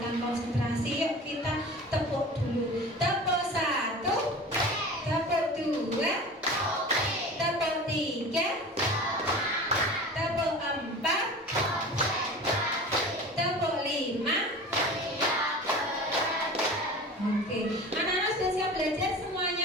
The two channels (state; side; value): normal; both; correlation 0.36